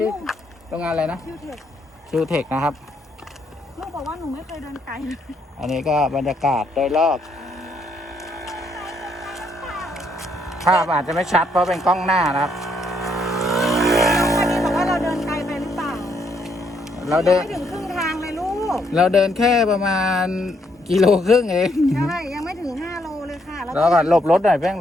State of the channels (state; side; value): normal; both; correlation 0.72